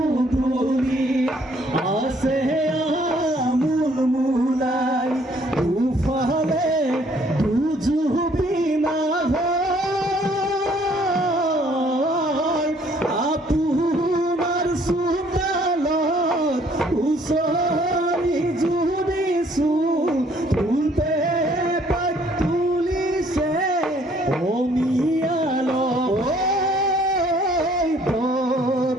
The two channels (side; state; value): both; normal; correlation 0.62